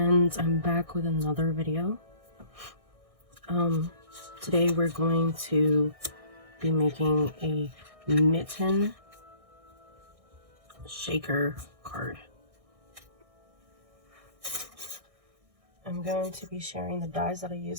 I'm back with another video. Today we're going to be making a Mitten shaker card. I'm going to be sharing the dies that I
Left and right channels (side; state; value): left; late; 1.6 ms